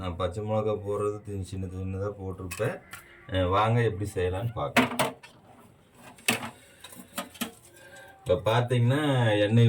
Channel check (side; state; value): both; identical; correlation 1.00